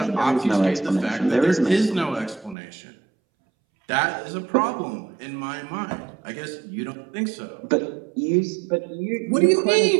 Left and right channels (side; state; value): left; drops out; at 2.6 s